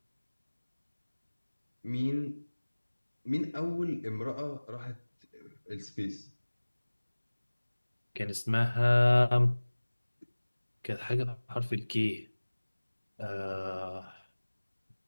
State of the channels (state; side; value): inverted; both; correlation -1.00